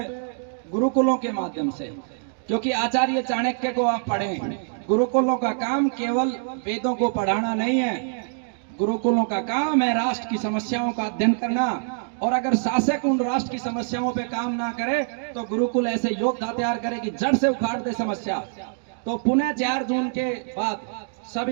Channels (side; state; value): left; silent; digital silence